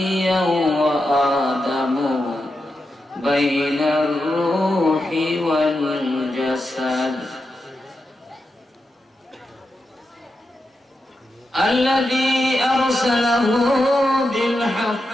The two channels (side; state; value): both; normal; correlation 0.88